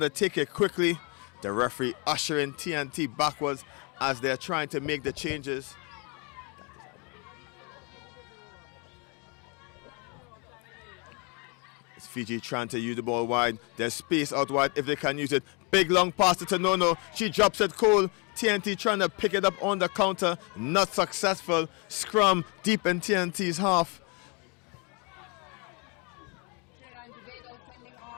to take it quickly. The referee ushering TNT backwards as they're trying to make the changes. It's Fiji trying to use the ball wide. There's space out wide if they can use it. Big long pass to Tonono. She drops it cold. TNT trying to pick it up on the counter. Not successful. Scrum deep in TNT's half. Trinidad and Tobago sending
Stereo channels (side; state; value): right; quieter; 32.9 dB